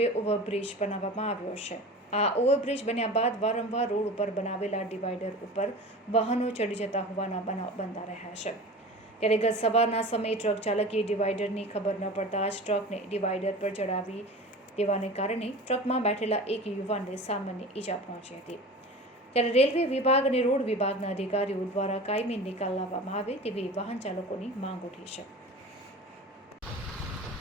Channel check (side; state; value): both; normal; correlation 0.35